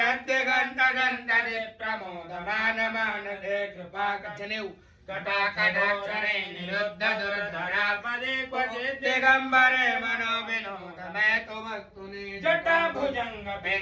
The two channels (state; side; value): identical; both; correlation 1.00